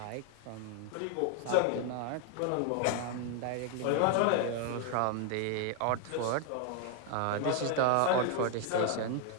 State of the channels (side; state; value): both; different; correlation 0.00